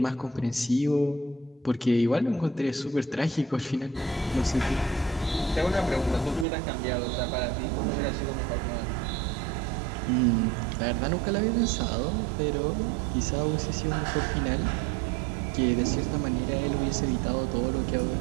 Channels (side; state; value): left; drops out; at 6.5 s